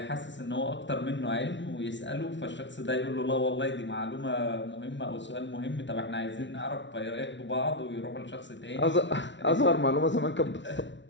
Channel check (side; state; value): right; late; 0.53 ms